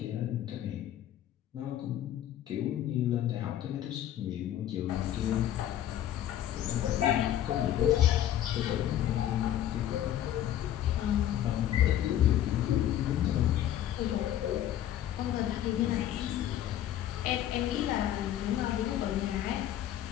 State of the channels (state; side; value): quieter; right; 11.7 dB